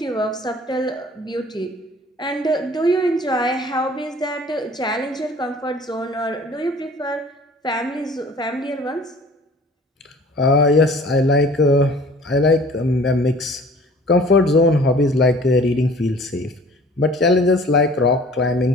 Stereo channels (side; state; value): both; normal; correlation 0.49